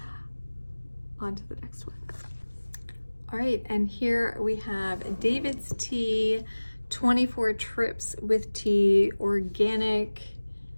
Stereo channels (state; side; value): inverted; both; correlation -1.00